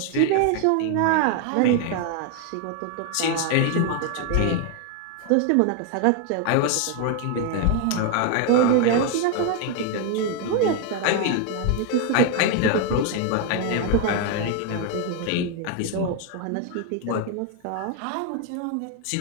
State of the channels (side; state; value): both; different; correlation 0.00